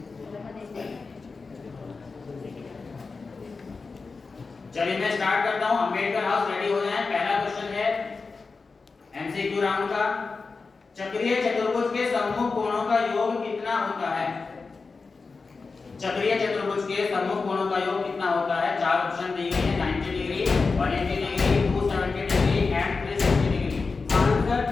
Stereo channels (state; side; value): quieter; right; 4.3 dB